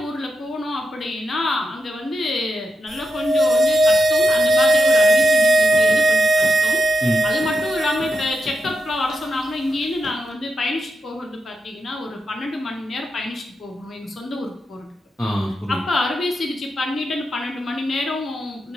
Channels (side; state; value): both; normal; correlation 0.86